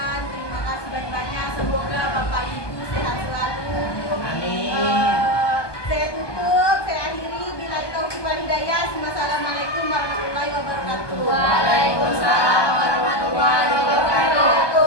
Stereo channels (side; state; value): right; late; 1.2 ms